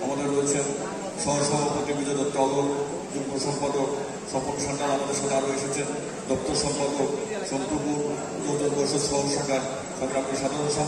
আমাদের রয়েছেন সহসভাপতি বিজয় দত্ত অলর, যুগ্ম সম্পাদক স্বপন সান্যাল আমাদের সাথে আরও এসেছেন, দপ্তর সম্পাদক সন্তুপুর উদযাপন পরিষদ সহ শাখার সংগ্রামী সাধারণ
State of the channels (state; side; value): identical; both; correlation 1.00